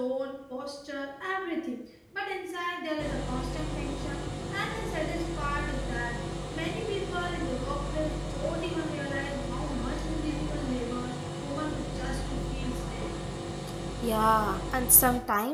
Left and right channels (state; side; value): identical; both; correlation 1.00